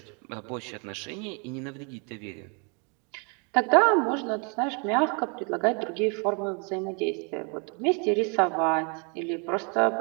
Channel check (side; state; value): left; quieter; 35.8 dB